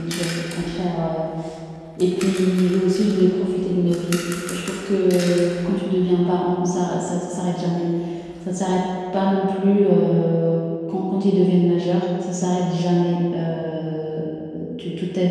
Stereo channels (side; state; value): both; identical; correlation 1.00